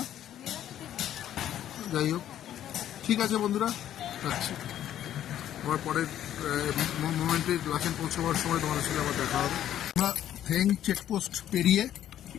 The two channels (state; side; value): quieter; right; 11.3 dB